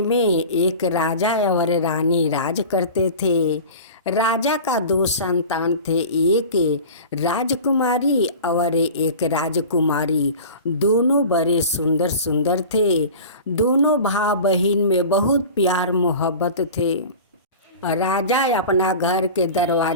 में एक राजा और रानी राज करते थे। राजा का दो संतान थे, एक राजकुमारी और एक राजकुमारी। दोनों बड़े सुंदर सुंदर थे। दोनों भाई बहन में बहुत प्यार मोहब्बत थे। राजा अपना घर के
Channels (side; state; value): both; inverted; correlation -0.36